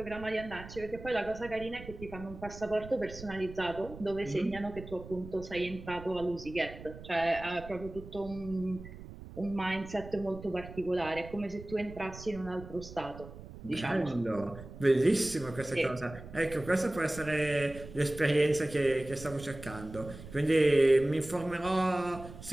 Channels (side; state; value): right; noise; rumble, 14 dB below the sound